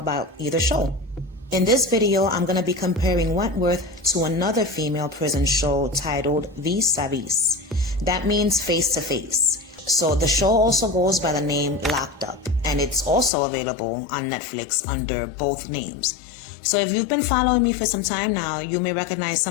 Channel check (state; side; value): drops out; right; at 13.3 s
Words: either show. In this video, I'm going to be comparing Wentworth to another female prison show titled Vis a Vis. That means face to face. So the show also goes by the name Locked Up, and it's also available on Netflix under both names. So if you've been following me for some time now, you may recognize